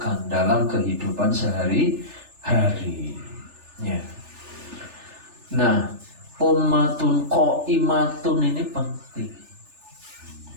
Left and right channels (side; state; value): left; late; 3.4 ms